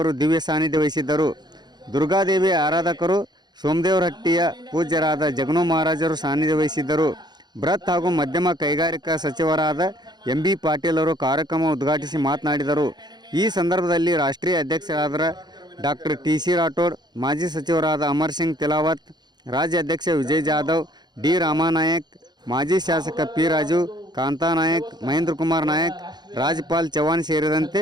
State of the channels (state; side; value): late; left; 0.21 ms